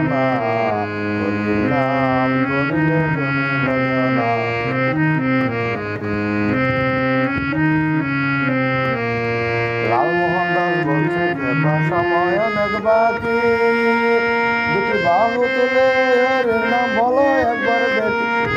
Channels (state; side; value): identical; both; correlation 1.00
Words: হরির নাম করিলে তুমি ভজনা। লালমোহন দাস বলছে কেবা সময় অনেক বাকি, দুটি বাহু তুলে হরির নাম বলো একবার দেখি,